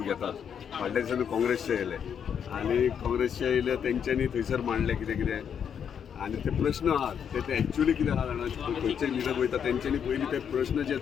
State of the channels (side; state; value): right; quieter; 7.9 dB